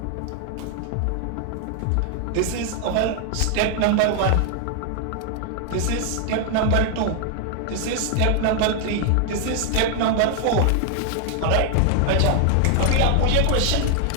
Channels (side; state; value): both; different; correlation 0.00